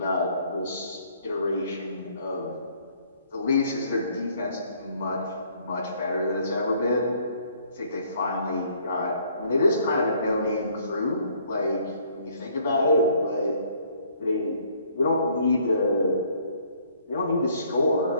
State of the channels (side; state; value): both; inverted; correlation -0.62